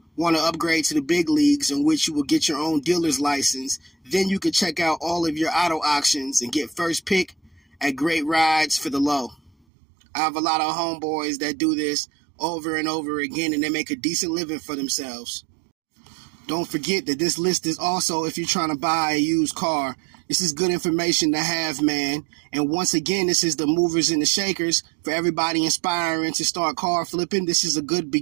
want to upgrade to the big leagues, in which you will get your own dealer's license. Then you can check out all of your auto auctions and get first pick at great rides for the low. I have a lot of homeboys that do this over and over again, and they make a decent living for themselves. Don't forget that this list is also if you're trying to buy a used car. This is good information to have, man. And once again, this is the movers and the shakers for everybody inspiring to start car flipping. This is a good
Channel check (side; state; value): left; drops out; at 9.6 s